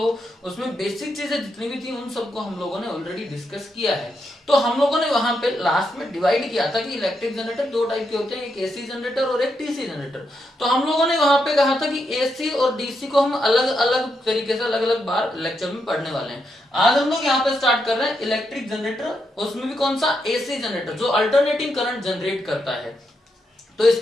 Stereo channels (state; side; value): normal; both; correlation 0.82